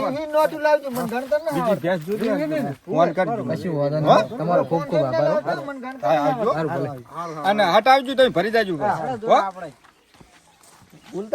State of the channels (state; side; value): identical; both; correlation 1.00